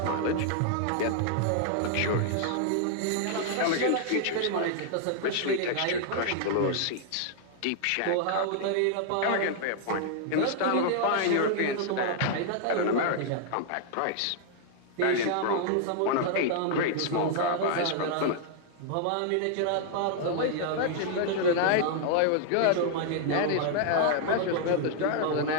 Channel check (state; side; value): different; both; correlation -0.01